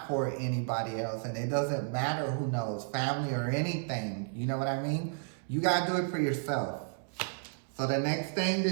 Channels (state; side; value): silent; left; 56 dB below the other